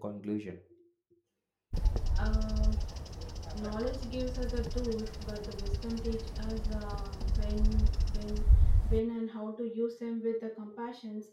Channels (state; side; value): identical; both; correlation 1.00